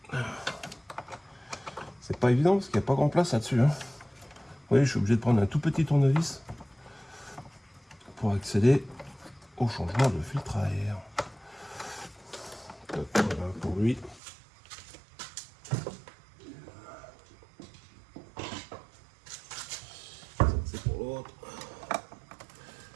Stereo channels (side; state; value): left; drops out; at 14.2 s